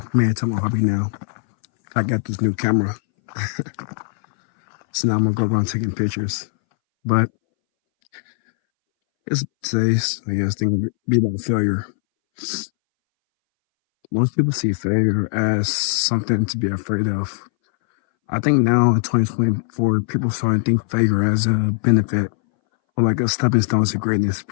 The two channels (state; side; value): silent; right; 63 dB below the other